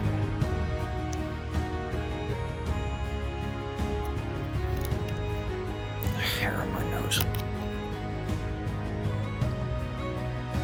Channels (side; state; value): both; identical; correlation 1.00